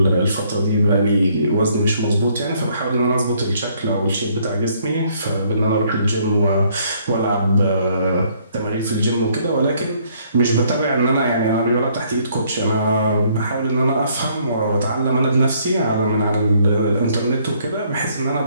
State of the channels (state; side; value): inverted; both; correlation -0.65